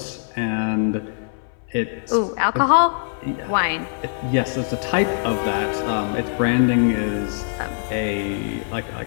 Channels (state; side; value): silent; right; 64 dB below the other